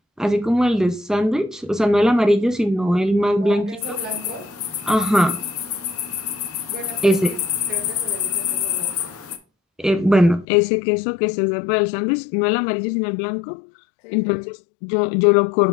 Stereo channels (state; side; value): drops out; right; at 10.5 s